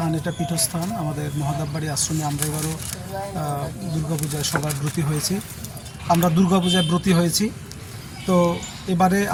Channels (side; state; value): both; identical; correlation 1.00